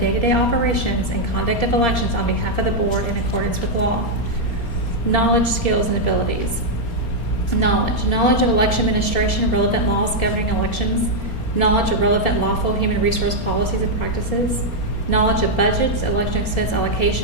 operations and conduct of elections on behalf of the board in accordance with law. Knowledge, skills, and abilities. Knowledge of election administration, relevant laws governing elections. Knowledge of relevant lawful human resource policies and practices. Knowledge of budgets, election expense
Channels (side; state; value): right; late; 4.3 ms